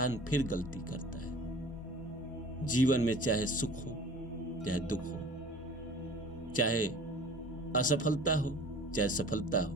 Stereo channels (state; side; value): normal; both; correlation 0.44